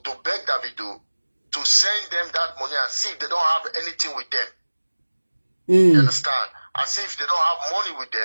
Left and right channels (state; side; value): inverted; both; correlation -1.00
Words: to beg Davido to send them that money and see if they don't have anything with them. You understand? As if they don't have money with